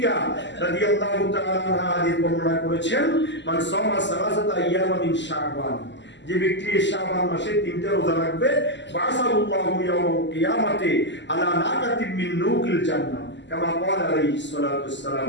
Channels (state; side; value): late; right; 0.52 ms